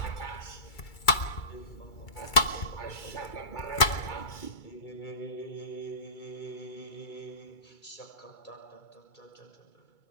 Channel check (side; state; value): right; late; 2.3 ms